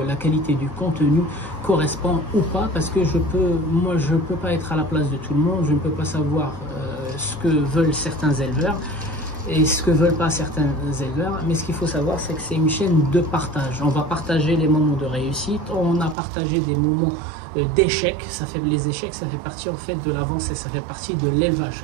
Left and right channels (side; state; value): left; drops out; at 16.2 s